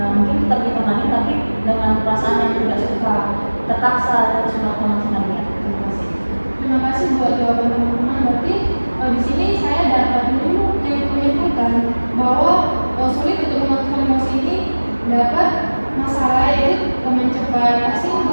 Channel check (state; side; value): inverted; both; correlation -1.00